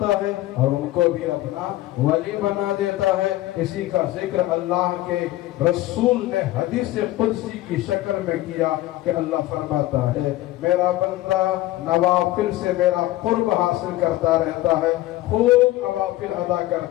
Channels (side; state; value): right; quieter; 16.4 dB